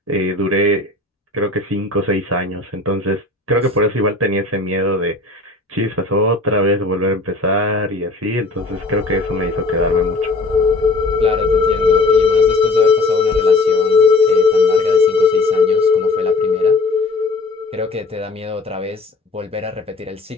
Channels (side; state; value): right; quieter; 3.2 dB